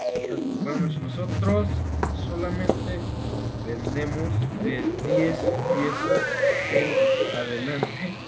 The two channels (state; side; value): identical; both; correlation 1.00